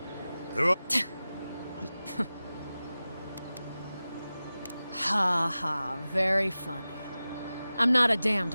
There are... Ha ha, very funny. I'm not a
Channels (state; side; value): inverted; both; correlation -0.96